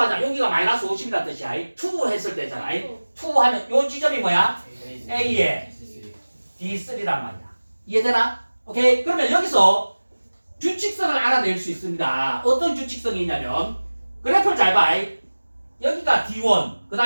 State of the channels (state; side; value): inverted; both; correlation -1.00